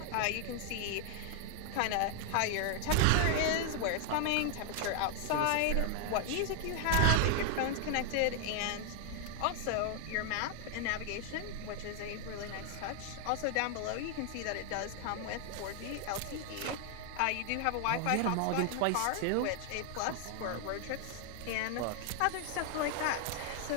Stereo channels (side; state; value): both; different; correlation 0.00